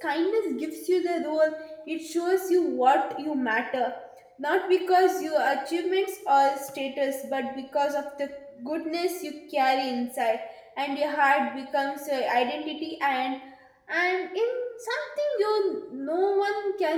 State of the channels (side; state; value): both; identical; correlation 1.00